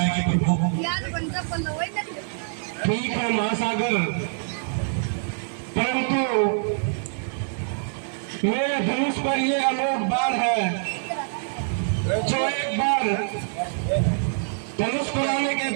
प्रभु, ठीक है महासागर, परंतु मेरे धनुष पर ये अलोक बाण है, जो एक बार धनुष पर आने के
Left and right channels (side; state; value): left; silent; digital silence